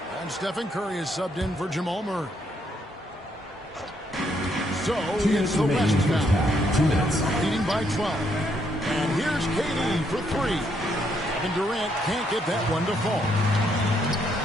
And Stephen Curry is subbed in for Jamal Murray. So it's the West now. 2 minutes. Leading by 12. And here's KD for 3. And Durant can't get that one to fall.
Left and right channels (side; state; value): both; normal; correlation 0.74